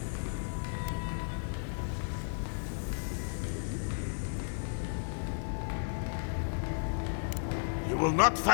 You will not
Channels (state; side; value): silent; right; 55 dB below the other